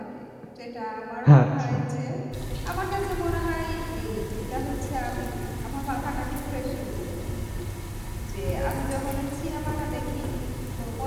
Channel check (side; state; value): both; identical; correlation 1.00